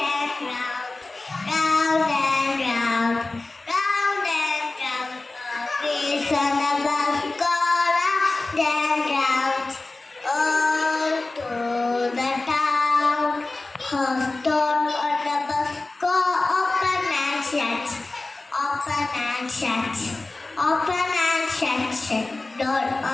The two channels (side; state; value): right; quieter; 3.2 dB